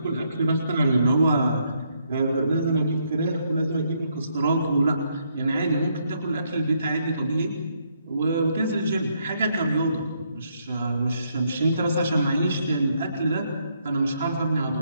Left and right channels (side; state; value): both; inverted; correlation -0.74